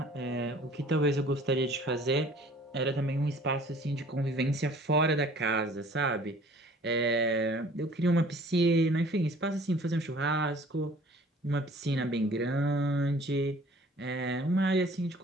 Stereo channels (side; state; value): both; normal; correlation 0.52